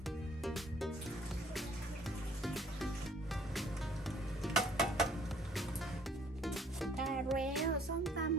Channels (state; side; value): normal; both; correlation 0.59